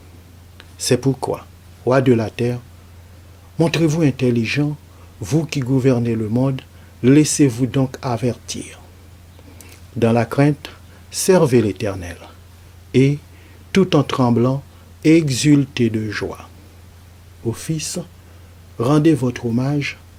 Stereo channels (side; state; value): both; identical; correlation 1.00